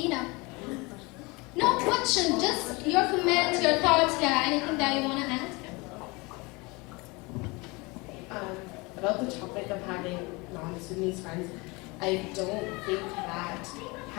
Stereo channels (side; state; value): right; quieter; 25.8 dB